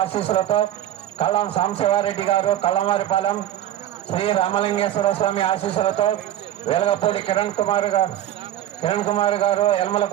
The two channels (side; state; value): left; quieter; 12.2 dB